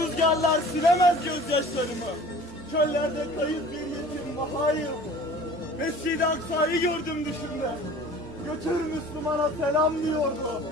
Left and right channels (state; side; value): normal; both; correlation 0.45